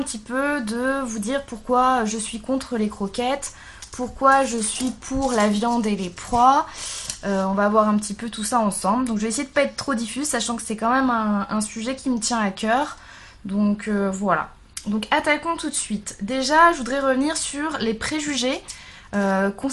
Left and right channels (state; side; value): identical; both; correlation 1.00